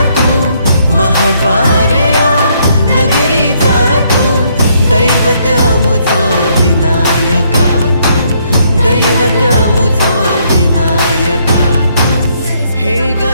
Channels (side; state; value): both; inverted; correlation -0.70